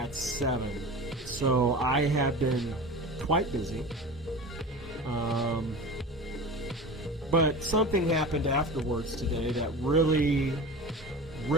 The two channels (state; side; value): normal; both; correlation 0.33